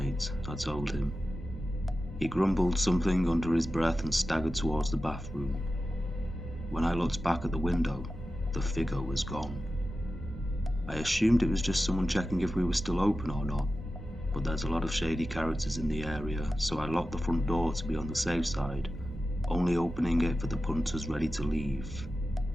I told him. He grumbled something under his breath and staggered towards the bathroom. When I looked back at the window, the figure was gone. I assumed it was just someone checking if we were still open or not, but there's a lot of shady characters in the area, so I locked the front door to be on the safe side, only opening it for the punters ready to leave.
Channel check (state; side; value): normal; both; correlation 0.93